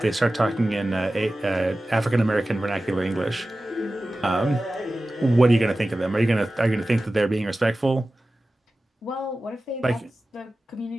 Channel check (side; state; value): both; normal; correlation 0.95